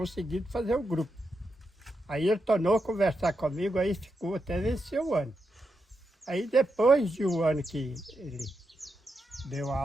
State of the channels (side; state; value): both; normal; correlation 0.85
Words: fazer o grupo. Aí ele tornou a conversar comigo, aí ficou até vencer o ano. Aí depois de um ano que ele deu